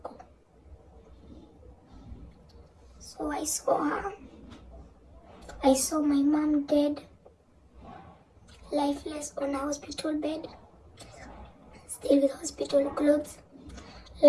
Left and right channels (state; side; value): identical; both; correlation 1.00